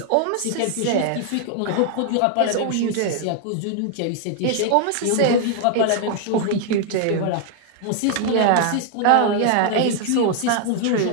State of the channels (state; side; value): different; both; correlation 0.00